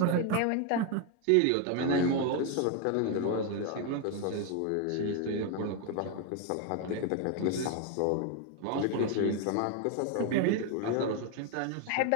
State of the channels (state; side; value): different; both; correlation 0.01